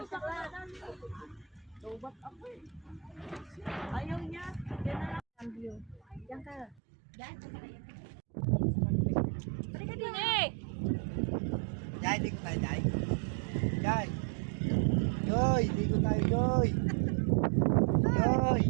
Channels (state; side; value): drops out; left; at 6.8 s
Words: Ayaw niya. Yan ka. Yan ka. Balik ka din eh. Jai, di ko tayo, Jai. Jai. Joy, di ko tayo, Joy. Joy.